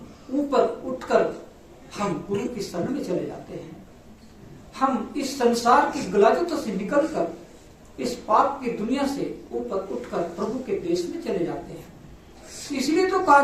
ऊपर उठकर हम गुरु की शरण में चले जाते हैं। हम इस संसार की गलाजतों से निकलकर इस पाप की दुनिया से ऊपर उठकर प्रभु के देश में चले जाते हैं। इसलिए तो कहा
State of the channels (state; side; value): identical; both; correlation 1.00